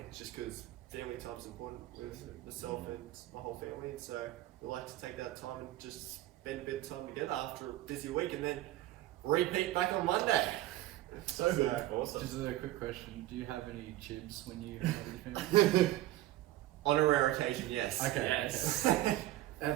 just because family time's important with myself and my whole family. And so we like to take that time and just spend a bit of time together after a busy week, and then repeat back on Monday. So good. Awesome. Just a quick question: do you have any chibs when you hang out with your family? On a rare occasion, yes. Okay. Yes. Okay.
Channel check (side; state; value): left; quieter; 15.4 dB